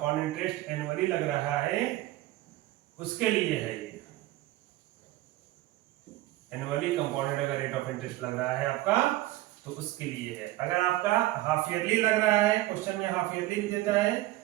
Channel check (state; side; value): quieter; left; 17.1 dB